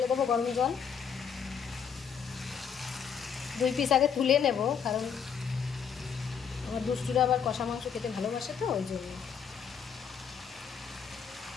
দেবো, গরম জল। 2 পিস আগে তুলে নেব, কারণ আমার দুষ্টুরা আবার কষা মাংস খেতে ভালোবাসে, তো ওই জন্য।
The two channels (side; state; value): right; quieter; 7.2 dB